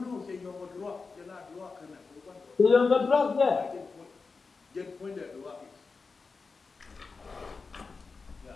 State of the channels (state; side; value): quieter; right; 4.5 dB